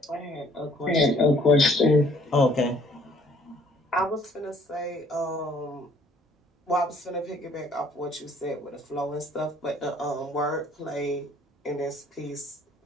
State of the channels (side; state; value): both; normal; correlation 0.60